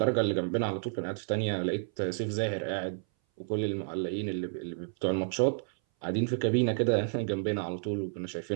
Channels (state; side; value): silent; left; 57 dB below the other